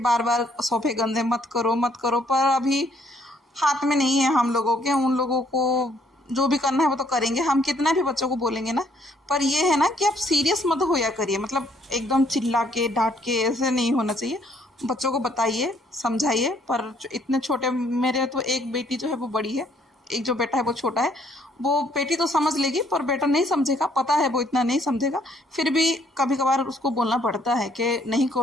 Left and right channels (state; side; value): normal; both; correlation 0.66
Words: बार सोफे गंदे मत करो मत करो, पर अभी हाथ में नहीं है हम लोगों के। उन लोगों को जो भी करना है वो तो करेंगे, हम कितना भी बच्चों को बोलेंगे ना। पर ये है ना कि आप सीरियस मत होया करिए, मतलब एकदम चिल्ला के डांट के ऐसे नहीं होना चाहिए। बच्चों को बताइए, समझाइए। पर इतने छोटे, मेरे तो एक बेटी जो है वो बड़ी है, एक जो बेटा है वो छोटा है। वो बेटी तो समझ लेगी पर बेटा नहीं समझेगा, पता है वो इतना नहीं समझेगा, फिर भी कभी कभार उसको बोलना पड़ता है कि नहीं